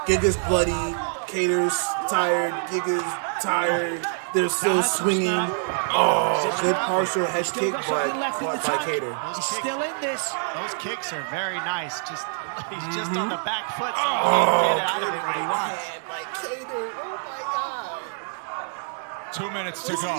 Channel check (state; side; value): silent; left; digital silence